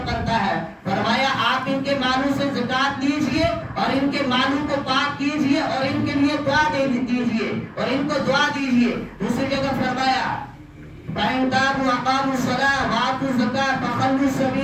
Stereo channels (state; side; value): identical; both; correlation 1.00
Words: بنتا ہے۔ فرمایا آپ ان کے مالوں سے زکات دیجئے اور ان کے مالوں کو پاک کیجئے اور ان کے لیے دعا دیجئے اور ان کو دعا دیجئے۔ دوسری جگہ فرمایا فَإِن تَابُوا وَأَقَامُوا الصَّلَاةَ وَآتُوا الزَّکَاةَ فَخَلُّوا